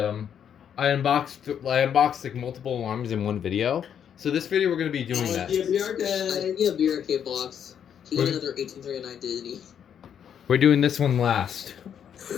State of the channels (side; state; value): right; quieter; 8.6 dB